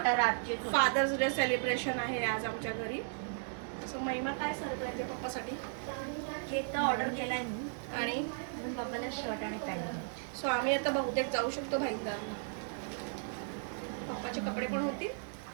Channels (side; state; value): left; silent; digital silence